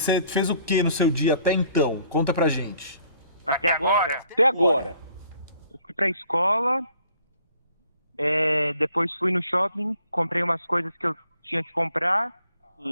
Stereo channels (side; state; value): both; inverted; correlation -0.61